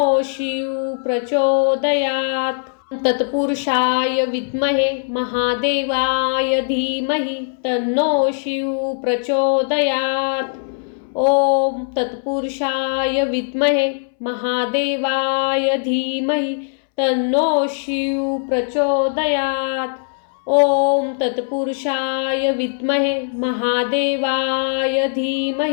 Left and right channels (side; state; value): right; silent; 65 dB below the other